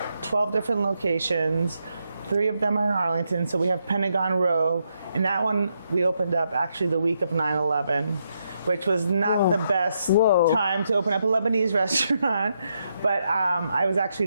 12 different locations. 3 of them are in Arlington. So we have Pentagon Row. And that one we opened up actually the week of 9/11, which was not the best time to open up a Lebanese restaurant. But I was actually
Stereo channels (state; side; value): inverted; both; correlation -0.80